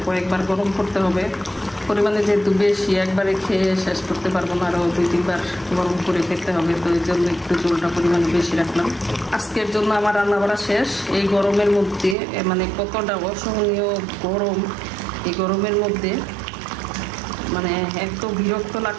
কয়েকবার গরম করতে হবে। পরিমাণে যেহেতু বেশি, একবারে খেয়ে শেষ করতে পারবো না, আরও 2-3 বার গরম করে খেতে হবে। তো এই জন্য একটু ঝোলটা পরিমাণে বেশি রাখলাম। আজকের জন্য আমার রান্না বাড়া শেষ। এই গরমের মধ্যে মানে কতটা অসহনীয় গরম, এই গরমের মধ্যে মানে এত বিরক্ত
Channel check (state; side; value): drops out; left; at 12.2 s